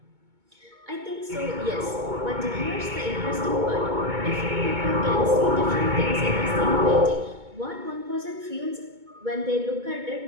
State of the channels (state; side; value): late; left; 2.2 ms